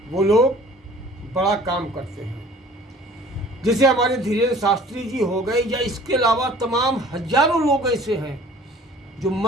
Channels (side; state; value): both; normal; correlation 0.49